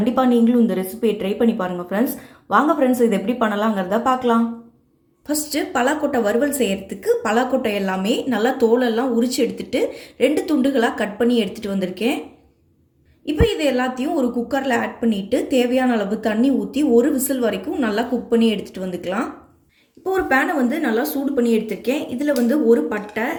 நீங்களும் இந்த ரெசிபியை ட்ரை பண்ணி பாருங்கள் ஃப்ரெண்ட்ஸ். வாங்க ஃப்ரெண்ட்ஸ், இது எப்படி பண்ணலாங்கிறத பார்க்கலாம். ஃபஸ்ட்டு பலாக்கொட்டை வறுவல் செய்கிறதுக்கு பலாக்கொட்டை எல்லாமே நல்லா தோலெல்லாம் உரித்து எடுத்துகிட்டு 2 துண்டுகளாக கட் பண்ணி எடுத்துகிட்டு வந்திருக்கேன். இப்போ இது எல்லாத்தையும் ஒரு குக்கரில் ஆட் பண்ணிவிட்டு தேவையான அளவு தண்ணி ஊற்றி ஒரு விசில் வரைக்கும் நல்லா குக் பண்ணி எடுத்துகிட்டு வந்துக்கலாம். இப்போ ஒரு பேனை நல்லா சூடு பண்ணி எடுத்திருக்கேன். இதில் ஒரு பட்டை,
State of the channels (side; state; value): both; identical; correlation 1.00